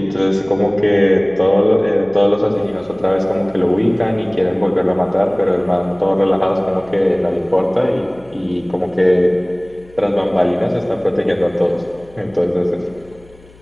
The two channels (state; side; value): noise; left; hum, 26 dB below the sound